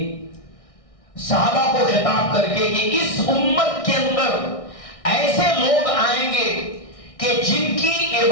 صحابہ کو خطاب کر کے کہ اس امت کے اندر ایسے لوگ آئیں گے کہ جن کی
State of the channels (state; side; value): late; right; 1.6 ms